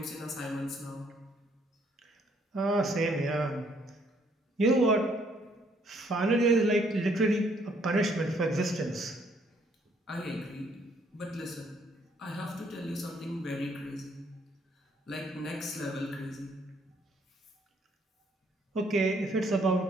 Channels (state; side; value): normal; both; correlation 0.67